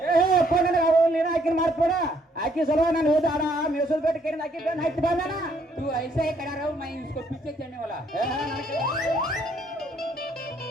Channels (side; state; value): both; normal; correlation 0.68